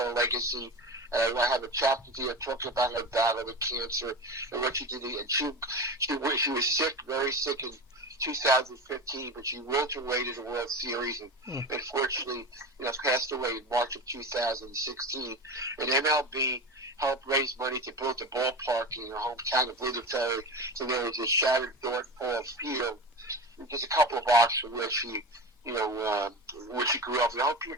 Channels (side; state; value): both; normal; correlation 0.26